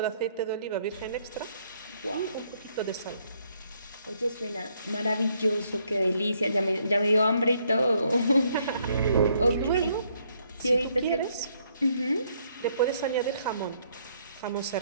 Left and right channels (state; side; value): inverted; both; correlation -0.70